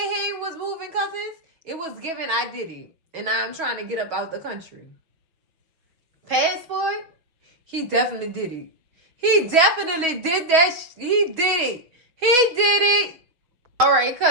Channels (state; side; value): late; left; 6.2 ms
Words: was moving, cousins, it was giving I did it. And I'm trying to get up out the country. Passport? He definitely did it. He definitely did that. He did it. He did it. All right,